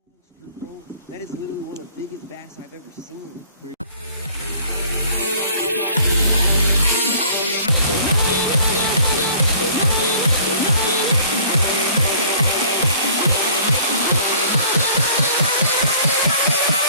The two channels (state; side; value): inverted; both; correlation -0.53